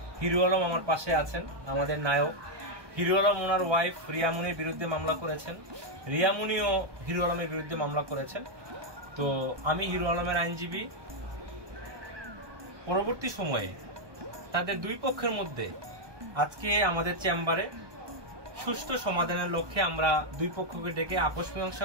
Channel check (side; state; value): left; late; 1.2 ms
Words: হিরো আলম আমার পাশে আছেন, আমাদের নায়ক। হিরো আলম ওনার ওয়াইফ রিয়ামণির বিরুদ্ধে মামলা করেছেন, রিয়ামণিও হিরো আলমের বিরুদ্ধে মামলা করেছেন। তো আমি হিরো আলমের আইনজীবী। পরবর্তী সময়ে তাদের দুই পক্ষের মধ্যে আজকে আমাদের চেম্বারে সুষ্ঠু সমাধানের লক্ষ্যে আমরা দুই পক্ষকে ডেকে আপোষ